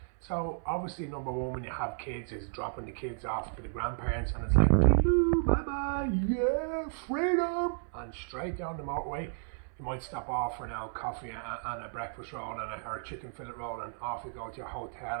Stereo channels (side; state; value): left; silent; 56 dB below the other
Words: So obviously, number one, when you have kids, is dropping the kids off to the grandparents, and it's like, doo-doo, bye-bye, yeah, freedom, and straight down the motorway. You might stop off for an old coffee and a breakfast roll or a chicken fillet roll, and off you go to your hotel,